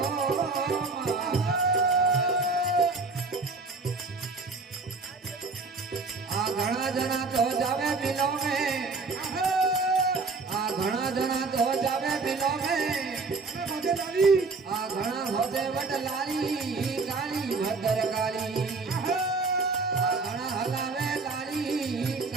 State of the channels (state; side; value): quieter; left; 4.0 dB